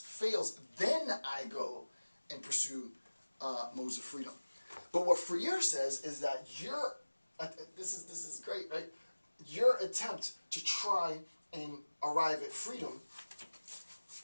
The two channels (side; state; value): both; inverted; correlation -1.00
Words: then I go and pursue modes of freedom. But what Freire says is that this is great, right? Your attempt to try and arrive at freedom,